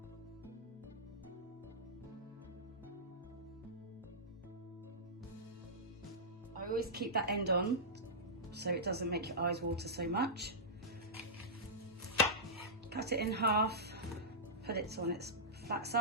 I always keep that end on so it doesn't make your eyes water so much. Cut it in half, put it on its flat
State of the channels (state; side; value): normal; both; correlation -0.14